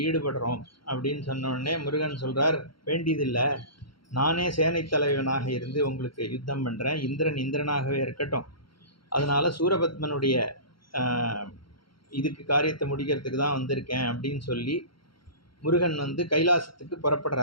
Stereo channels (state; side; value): late; right; 0.73 ms